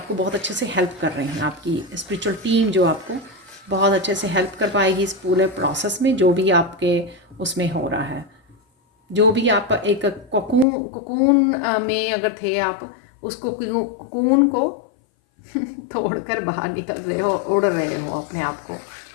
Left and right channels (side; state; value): right; drops out; at 10.7 s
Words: बहुत अच्छे से हेल्प कर रहे हैं, आपकी स्पिरिचुअल टीम जो आपको बहुत अच्छे से हेल्प कर पाएगी इस पूरे प्रोसेस में, जो भी आपके उसमें हो रहा है। जो भी आप एक कोकून में अगर थे आप, उसको कोकून को तोड़कर बाहर निकल रहे हो, उड़ रहे हो, अपने आप को